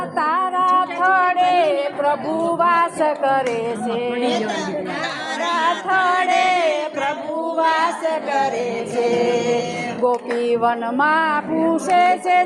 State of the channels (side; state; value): both; identical; correlation 1.00